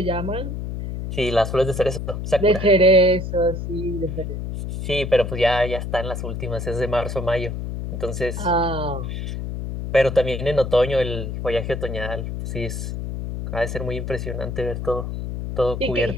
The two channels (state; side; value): noise; left; hum, 5 dB below the sound